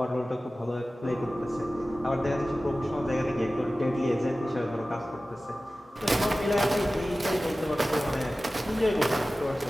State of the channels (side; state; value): both; normal; correlation 0.96